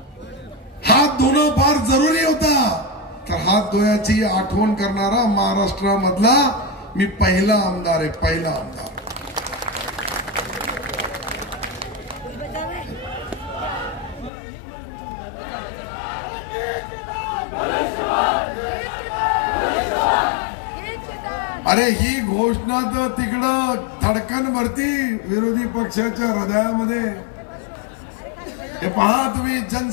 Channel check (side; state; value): right; drops out; at 14.3 s